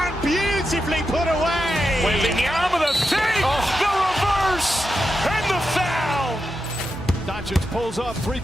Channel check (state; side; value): noise; right; hum, 15 dB below the sound